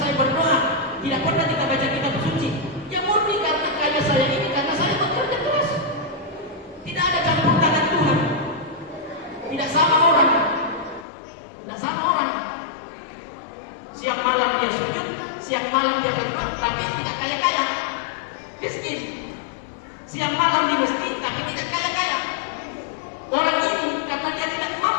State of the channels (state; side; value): drops out; right; at 11.1 s